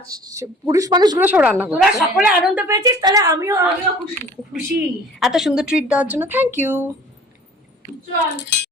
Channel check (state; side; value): normal; both; correlation 0.49